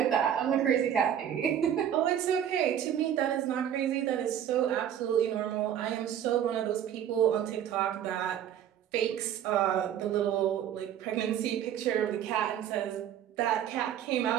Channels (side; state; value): left; quieter; 10.0 dB